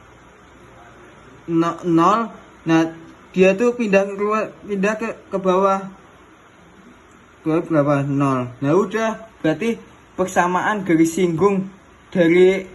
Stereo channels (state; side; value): identical; both; correlation 1.00